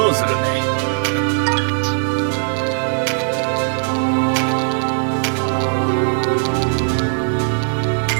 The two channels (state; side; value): silent; left; digital silence